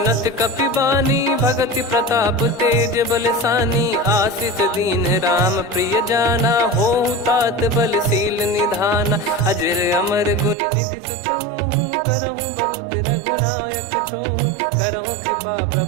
कपि बानी, भगति प्रताप तेज बलसानी। आशीष दीन राम प्रिय जाना, होहु तात बलशील निधाना। अजर अमर गुण निधि सुतहु, करहु बहुत रघुनायक छोहु। करहु कृपा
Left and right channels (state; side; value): drops out; left; at 10.6 s